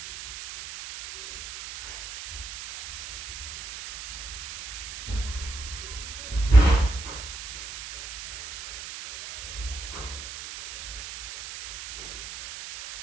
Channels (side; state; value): right; noise; hiss, 10 dB below the sound